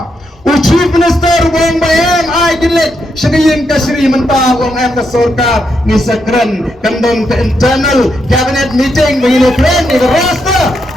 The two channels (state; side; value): normal; both; correlation 0.81